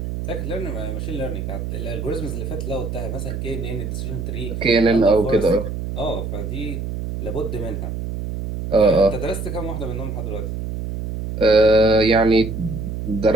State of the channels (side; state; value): right; noise; hum, 5 dB below the sound